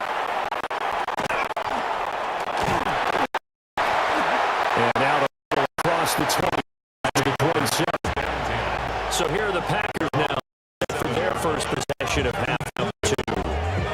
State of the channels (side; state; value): both; identical; correlation 1.00